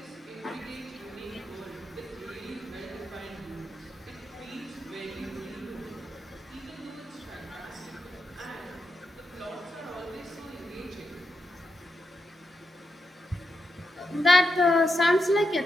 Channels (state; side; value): normal; both; correlation 0.86